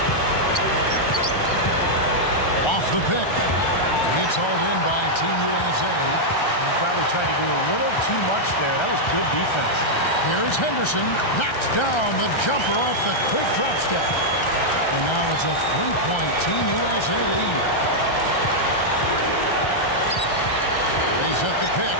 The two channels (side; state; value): right; late; 1.3 ms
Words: Off the pick. It's hauled in by Team USA. He probably tried to do a little too much there. That was good defense. Here's Henderson. Knocks down the jumper off the quick drop step. And now it's a 3-point Team USA lead. They set the pick.